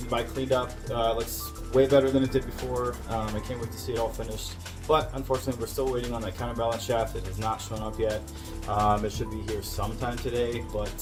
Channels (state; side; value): identical; both; correlation 1.00